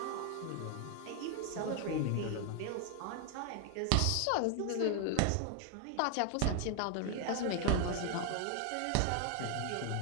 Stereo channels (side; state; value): both; different; correlation 0.00